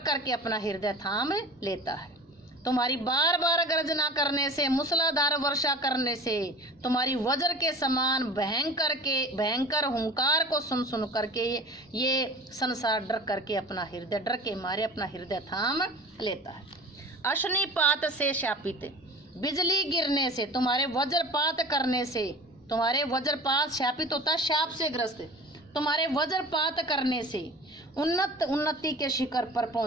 करके अपना हृदय थाम लेता है। तुम्हारी बार बार गर्जना करने से, मूसलाधार वर्षा करने से, तुम्हारी वज्र के समान भयंकर हुंकार को सुन सुन करके ये संसार डर करके अपना हृदय डर के मारे अपना हृदय थाम लेता है। अशनिपात से शापित, बिजली गिरने से, तुम्हारे वज्रपात करने से। तुम्हारे वज्रपात शापित होता है शाप से ग्रस्त। तुम्हारे वज्रपात करने से उन्नति के शिखर पर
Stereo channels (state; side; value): normal; both; correlation 0.40